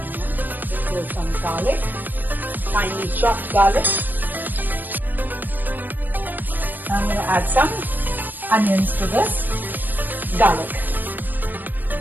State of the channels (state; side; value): late; left; 0.089 ms